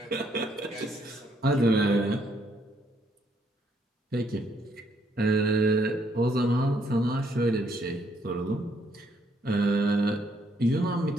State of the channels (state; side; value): normal; both; correlation 0.70